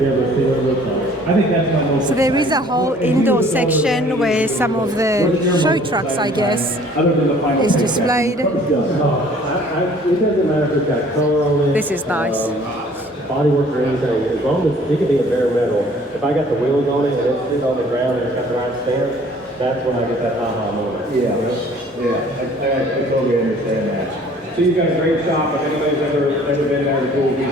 I think that's my most. So there is a whole indoor section where some of the show trucks, I guess, is displayed. It doesn't matter if it's got color on it. This is nice. Bodywork or anything, as long as it could be a bare metal. If I got the wheels on it and it's sitting on the ground and it's got the right stance, that's when I get that aha moment. Yeah, I totally understand that. So you've got a great shop. If anybody's ever been there, the pool,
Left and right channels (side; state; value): both; normal; correlation 0.54